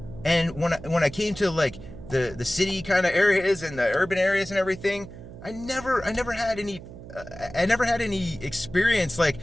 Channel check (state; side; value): noise; right; hum, 15 dB below the sound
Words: And when I came to like the city kind of areas and the urban areas and everything, I never had any experience with